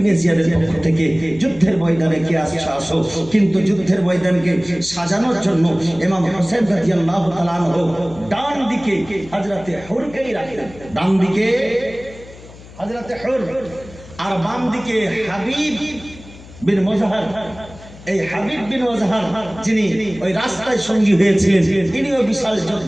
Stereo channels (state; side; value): noise; left; hum, 19 dB below the sound